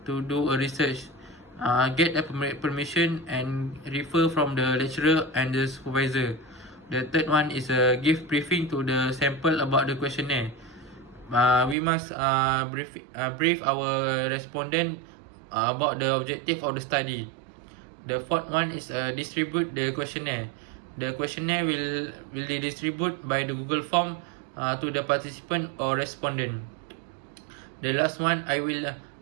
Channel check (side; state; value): left; drops out; at 11.8 s